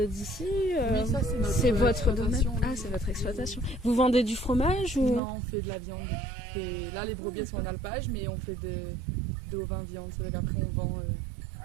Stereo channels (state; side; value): drops out; left; at 5.2 s